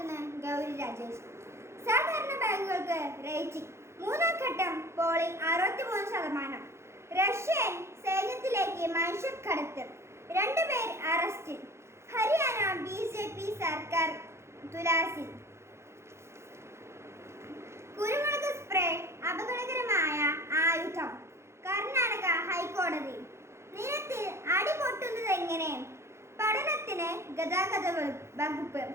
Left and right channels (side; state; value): left; late; 0.13 ms